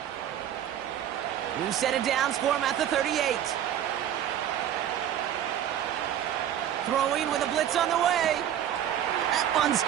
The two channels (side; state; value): left; quieter; 10.6 dB